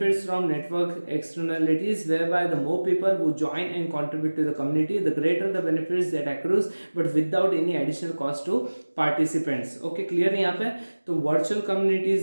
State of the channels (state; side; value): inverted; both; correlation -1.00